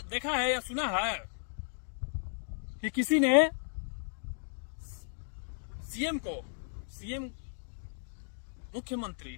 देखा है या सुना है कि किसी ने सीएम मुख्यमंत्री,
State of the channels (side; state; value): right; silent; digital silence